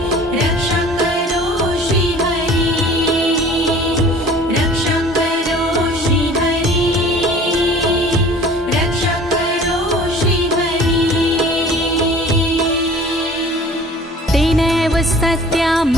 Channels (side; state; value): both; normal; correlation 0.47